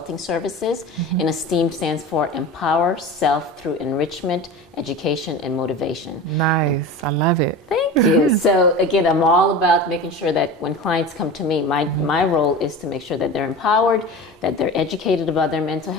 Services. And Esteem stands for Empower Self Through Enrichment, Education, and Motivation. Nice. I love it. Thank you. So again, I'm all about making sure that when clients come to me, my role is to make sure that they're empowered, that they're educated about their mental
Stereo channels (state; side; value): normal; both; correlation 0.32